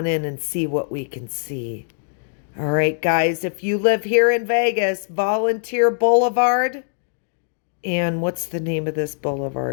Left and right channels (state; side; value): silent; right; digital silence